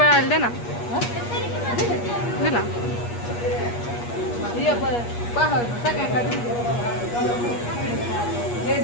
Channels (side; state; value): right; late; 8.4 ms